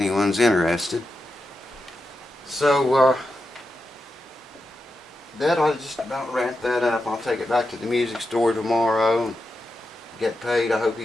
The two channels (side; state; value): both; normal; correlation 0.88